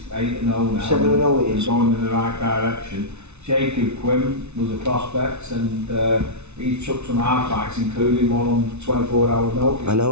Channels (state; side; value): late; left; 0.81 ms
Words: 8-0 now. 7-0 he is. Going in the right direction. Jacob Quinn was a prospect, and he took some hard fights, including one on 24-hour notice. I